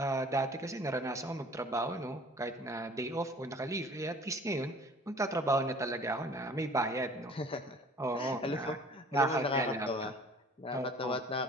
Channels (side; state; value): both; normal; correlation 0.49